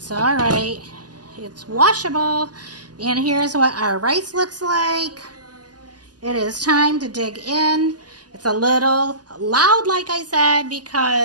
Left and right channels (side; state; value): left; late; 0.69 ms